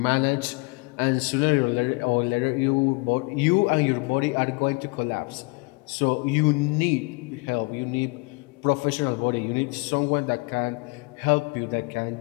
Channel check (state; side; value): quieter; right; 28.6 dB